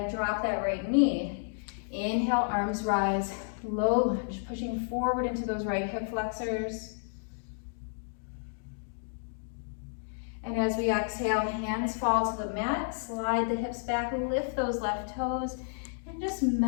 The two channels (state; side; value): silent; right; digital silence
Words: drop that right knee. Inhale, arms rise, low lunge, pushing forward into those right hip flexors. And as we exhale, hands fall to the mat, slide the hips back, lift those left toes, and just